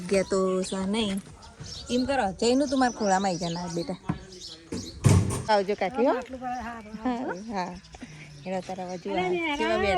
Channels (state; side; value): identical; both; correlation 1.00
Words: તો સા નહીં. એમ કરો જઈનું તું મારા ખોળામાં આવી જના બેટા. આવજો કાકી. હો હા એના તારા બાજુ કેવા